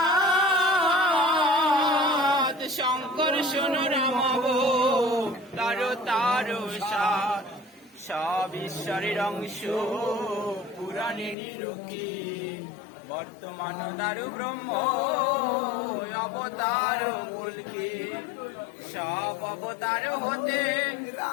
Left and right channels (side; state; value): right; drops out; at 11.4 s